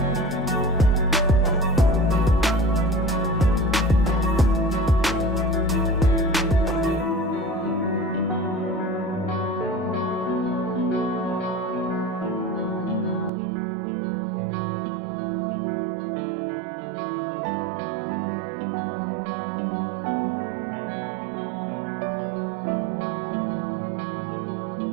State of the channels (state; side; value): drops out; left; at 13.3 s